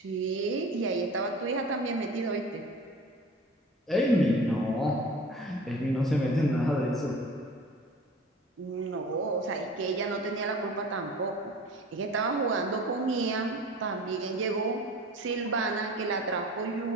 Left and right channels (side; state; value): both; normal; correlation 0.40